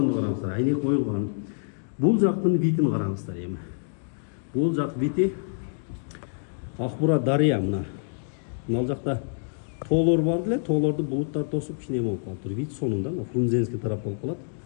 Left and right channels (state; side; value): silent; right; digital silence